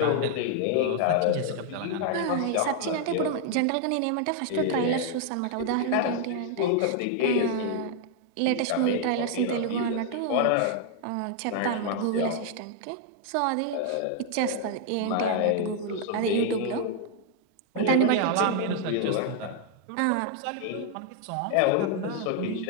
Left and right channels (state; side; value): different; both; correlation 0.00